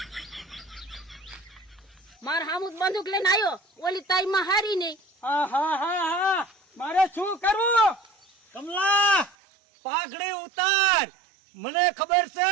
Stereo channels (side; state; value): left; drops out; at 9.3 s